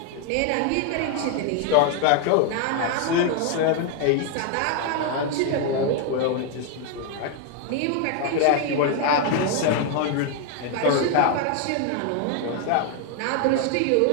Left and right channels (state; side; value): different; both; correlation 0.01